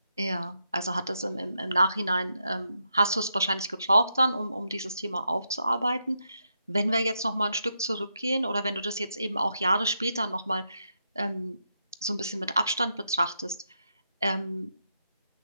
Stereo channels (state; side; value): inverted; both; correlation -0.83